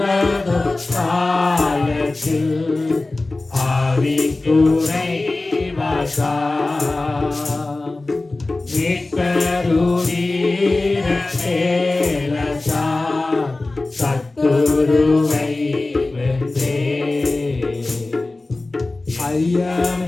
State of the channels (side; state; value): right; quieter; 3.1 dB